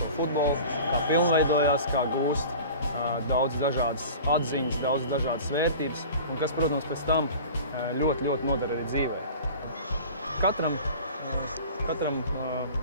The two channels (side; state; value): both; inverted; correlation -0.39